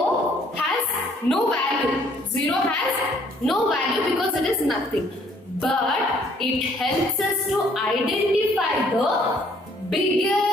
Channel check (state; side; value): normal; both; correlation 0.62